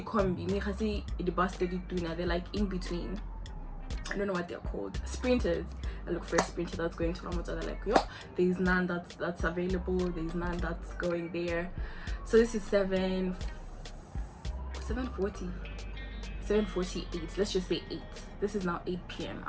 combi, the bus they're like in between. I don't know what they're called. Sprinters. I look for a sprinter that's going to Motswana. Like, yo, there's none that's available. There's none that's going there. So this is 7:40. 7:48. Let's just say 8. This is now 8 p.m.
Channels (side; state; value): both; identical; correlation 1.00